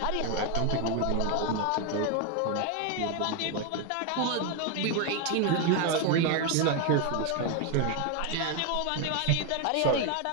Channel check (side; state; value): both; different; correlation 0.01